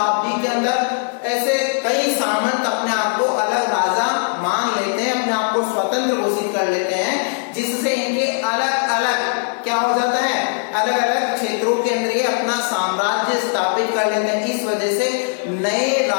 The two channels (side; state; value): right; silent; 59 dB below the other